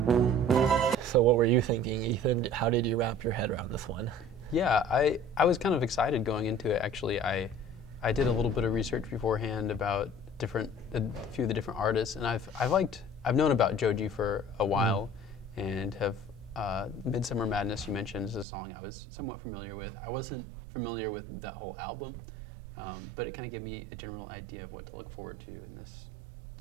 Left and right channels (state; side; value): drops out; left; at 18.4 s